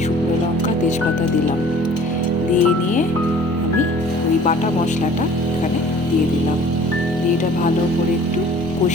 শুকনো লঙ্কা, তেজপাতা দিলাম। দিয়ে নিয়ে আমি ওই বাটা মশলাটা এখানে দিয়ে দিলাম। দিয়ে এটা ভালো করে একটু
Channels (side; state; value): both; normal; correlation 0.50